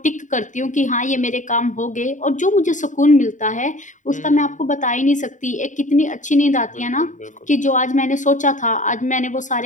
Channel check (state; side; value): late; right; 0.36 ms